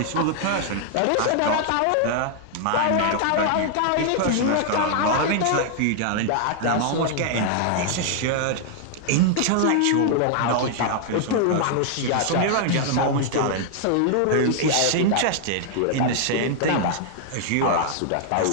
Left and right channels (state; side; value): different; both; correlation 0.00